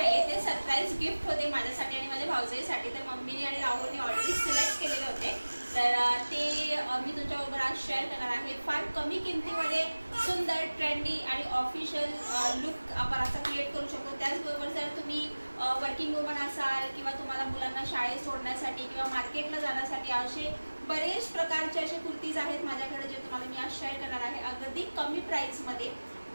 ते सरप्राईज गिफ्ट होते माझ्यासाठी आणि माझ्या भाऊजाईसाठी। तर मम्मीने आणि राहुलने ऑलरेडी सिलेक्ट केलेले होते, तर ते मी तुमच्याबरोबर आज शेअर करणार आहे। फार कमी किमतीमध्ये सुंदर, ट्रेंडी आणि ऑफिशियल लुक आपण असा क्रिएट करू शकतो। त्याचबरोबर जर तुम्ही वर्किंग वुमन असाल किंवा तुम्हाला मुलांना शाळेत सोडण्यासाठी किंवा मार्केटला जाण्यासाठी असे बरेच प्रकारचे असे कुर्तीज आहेत माझ्याकडे, जे तुम्हाला मी आज शेअर करणार आहे अगदी कमी प्राइसमध्ये।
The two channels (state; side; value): inverted; both; correlation -1.00